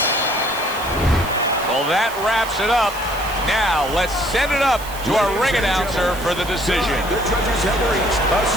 Well, that wraps it up. Now, let's send it up to our ring announcer for the decision. The judges have reached a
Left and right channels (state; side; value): noise; right; hiss, 15 dB below the sound